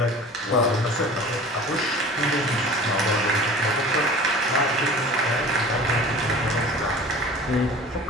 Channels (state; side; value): normal; both; correlation 0.41